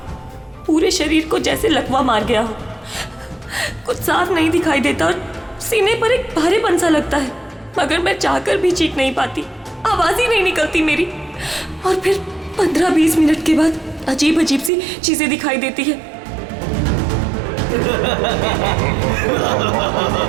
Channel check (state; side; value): drops out; left; at 14.7 s